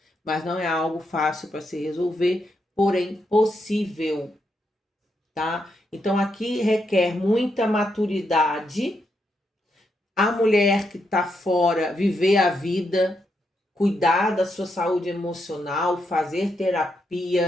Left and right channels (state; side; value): normal; both; correlation 0.81